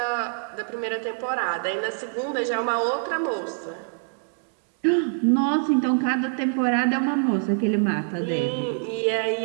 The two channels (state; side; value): silent; left; 62 dB below the other